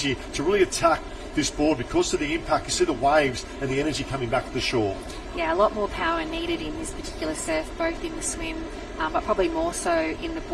to really attack this board because of the impact. You see the waves and the energy coming back to the shore. Yeah, a lot more power needed in this particular surf, both in the swim, but probably more so in the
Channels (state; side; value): identical; both; correlation 1.00